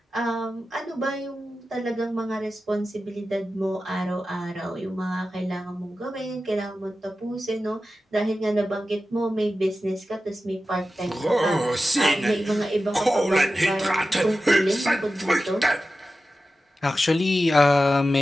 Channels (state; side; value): normal; both; correlation 0.93